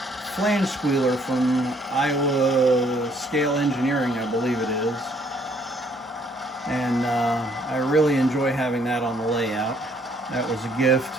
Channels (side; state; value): both; normal; correlation 0.65